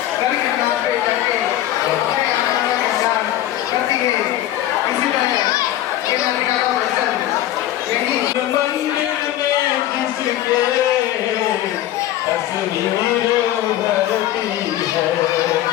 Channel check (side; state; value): right; quieter; 13.4 dB